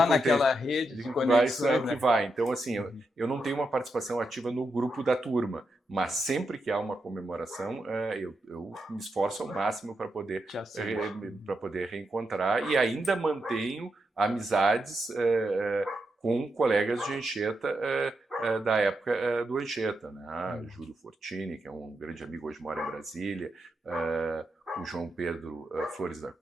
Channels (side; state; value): both; normal; correlation 0.85